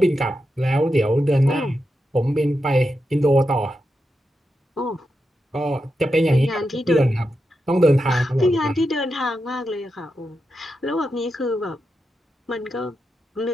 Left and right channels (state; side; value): normal; both; correlation 0.87